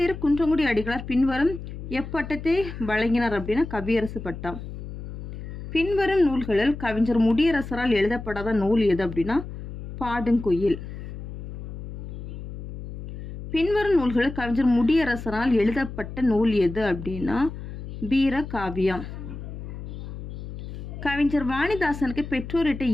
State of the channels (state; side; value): noise; left; hum, 10 dB below the sound